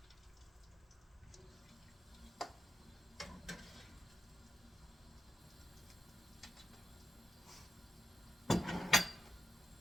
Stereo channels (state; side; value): normal; both; correlation 0.88